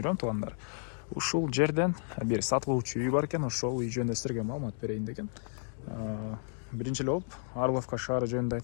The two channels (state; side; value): silent; right; 56 dB below the other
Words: туугандар. Ушул жерден бир сатылуучу үй бар экен, ошол үй жөнүндө силерге маалымат берейин деген. Биринчи эле болуп Орловка шаары жөнүндө